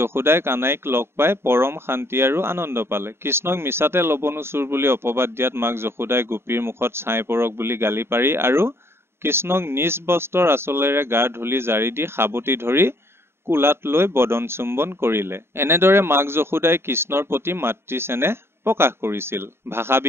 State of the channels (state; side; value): late; left; 0.12 ms